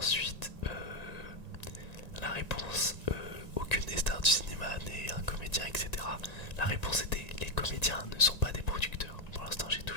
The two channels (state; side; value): late; right; 1.9 ms